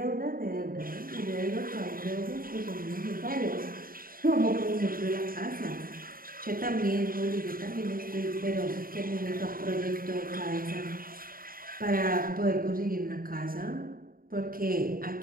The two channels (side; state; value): left; late; 0.42 ms